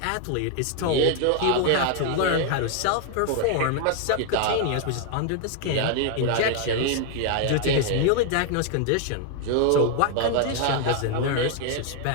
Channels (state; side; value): different; both; correlation 0.00